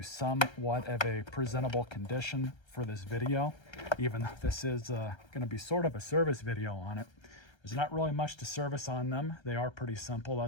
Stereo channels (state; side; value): late; right; 1.3 ms